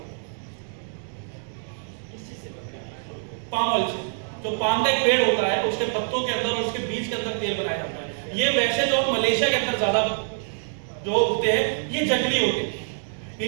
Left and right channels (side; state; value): left; silent; digital silence